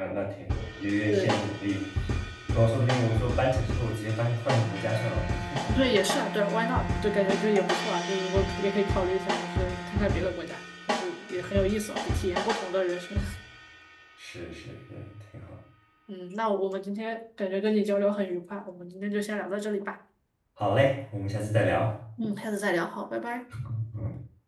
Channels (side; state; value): both; identical; correlation 1.00